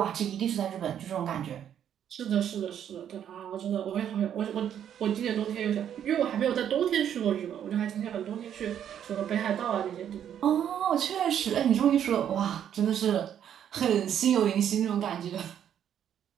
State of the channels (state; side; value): quieter; left; 9.5 dB